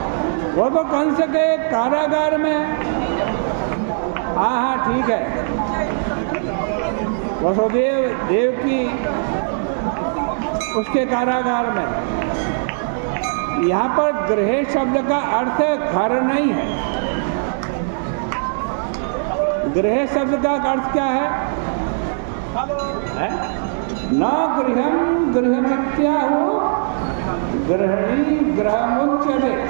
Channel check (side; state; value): left; silent; digital silence